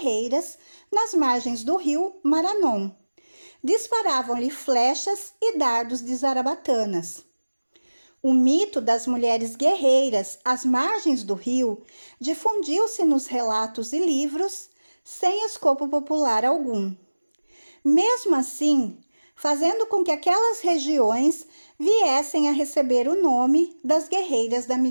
nas margens do rio Maranon. Disparavam-lhe flechas e dardos de zarabatanas. O mito das mulheres guerreiras às margens do rio difundiu-se nos relatos e livros sem escopo popular algum. Mesmo assim, fazendo com que aquelas regiões viessem a receber o nome das guerreiras da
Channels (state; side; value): inverted; both; correlation -1.00